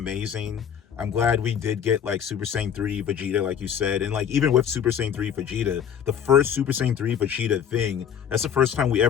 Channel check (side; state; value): right; quieter; 8.4 dB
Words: I'm glad we did get like Super Saiyan 3 Vegeta, like you said. And like even with Super Saiyan 3 Vegeta, the first Super Saiyan 3 Vegeta thing, that's the first time we